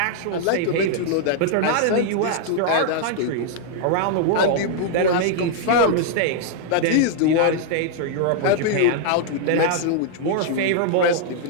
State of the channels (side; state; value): both; different; correlation -0.01